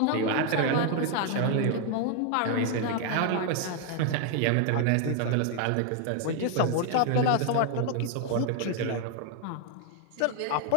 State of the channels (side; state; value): both; different; correlation 0.00